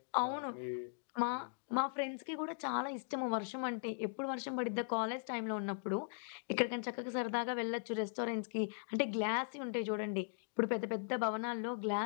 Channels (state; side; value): silent; right; digital silence